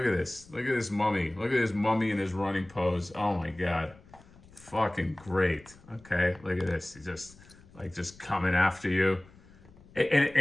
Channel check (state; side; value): noise; left; rumble, 24 dB below the sound